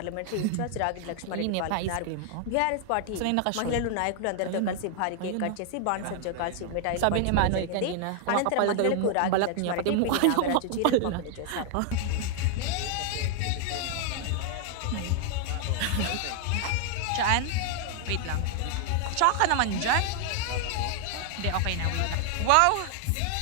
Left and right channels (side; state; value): both; different; correlation 0.00